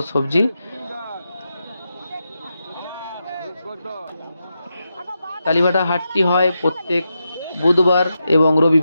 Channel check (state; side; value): inverted; both; correlation -0.87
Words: সবজি। কালীবাটা হাটটি হয় প্রত্যেক বুধবার এবং